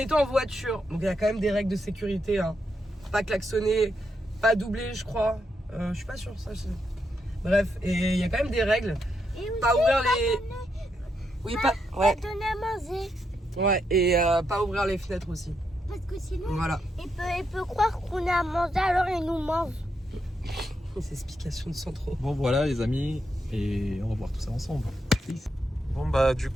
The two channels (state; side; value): normal; both; correlation 0.81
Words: en voiture. Donc il y a quand même des règles de sécurité. Hein. Pas klaxonner, pas doubler, je crois. Je suis pas sûre, ça. Bref, et il y a quand même des règles. Pas ouvrir les. Oui, pas. Ouais. Donner à manger. Ouais, et pas ouvrir les fenêtres aussi. Parce que sinon, voilà. il peut croire qu'on a à manger, alors il nous mange. C'est explication de Sandro. Bon voilà les amis, et on va voir tout ça ensemble. Bon bah du